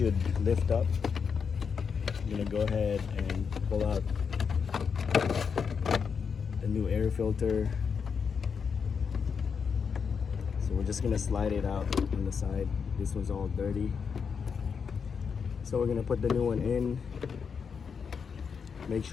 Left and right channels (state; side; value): quieter; right; 6.2 dB